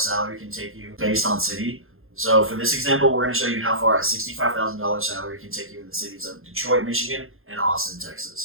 can take you based on city. So for this example, we're going to show you how far a $65,000 salary can take you in the cities of Detroit, Michigan, and Austin,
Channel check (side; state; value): left; late; 0.61 ms